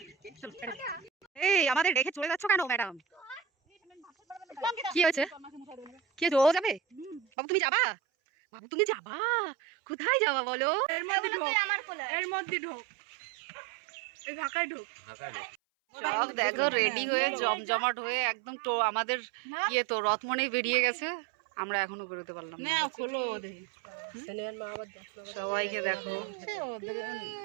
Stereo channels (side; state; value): left; drops out; at 7.2 s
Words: এই আমাদের রেখে চলে যাচ্ছ কেন ম্যাডাম? কি হয়েছে? কি হয়েছে? ও যাবে? বাবু তুমি যাবা? বাবু তুমি যাবা? কোথায় যাবা বলো? এর মধ্যে ঢোক, এর মধ্যে ঢোক, এই ঢাকায় ঢোক। সব দেখো রেডি হয়ে জমজমাট হয়ে একদম তো আমাদের ইয়ে তো রথ মনেই বেরিয়ে গেছে। আমরা এখনো বেরোতে পারলাম না। সবাইকে দেখো